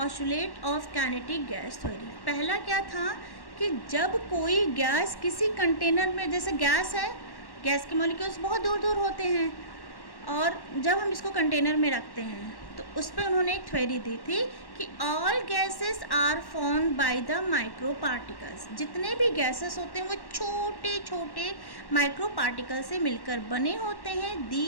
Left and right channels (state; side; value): late; right; 1.1 ms